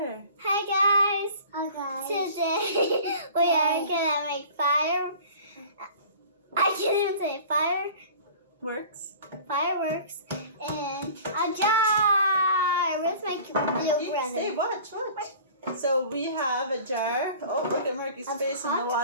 Hi guys. Hi guys. Today we are gonna make fire. I can't even say Works. Fireworks in a jar. Where's my little brother? Stay, watch. So we have a jar. Oh, look at Marky's face in the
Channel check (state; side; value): inverted; both; correlation -0.44